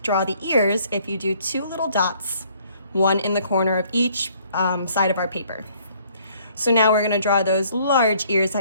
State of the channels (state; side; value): inverted; both; correlation -0.62